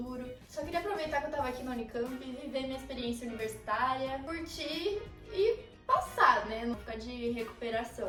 Só queria aproveitar que eu tava aqui na Unicamp, viver minha experiência universitária, curtir e passar, né? Não ficar de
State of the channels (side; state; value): both; identical; correlation 1.00